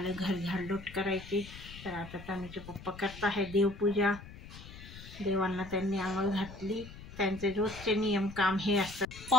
घर झाडलोट करायची। तर आता तनुचे पप्पा करत आहे देवपूजा। देवांना त्यांनी आंघोळ घातली। त्यांचे रोजचे नियम काम हे असतात।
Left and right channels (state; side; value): noise; left; rumble, 15 dB below the sound